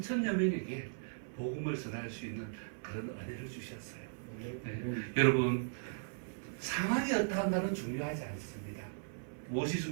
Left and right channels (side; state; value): left; silent; 53 dB below the other